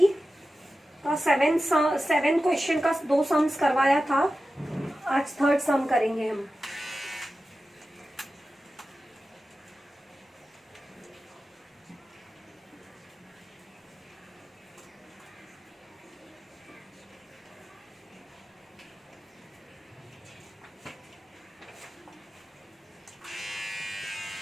का 7 question का 2 सम्स करवाया था। आज 3rd सम करेंगे हम।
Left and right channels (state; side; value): normal; both; correlation 0.93